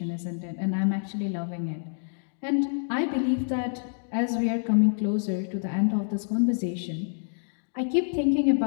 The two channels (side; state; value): right; silent; digital silence